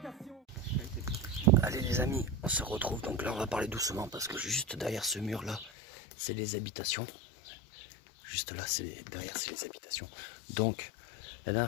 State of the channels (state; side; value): drops out; right; at 5.7 s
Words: Allez les amis, on se retrouve. Donc là on va parler doucement parce que juste derrière ce mur là, c'est les habitations. Juste là, derrière c'est les habitations. Donc la